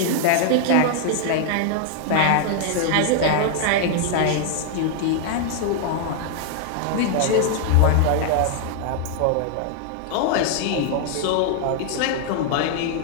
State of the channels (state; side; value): different; both; correlation 0.00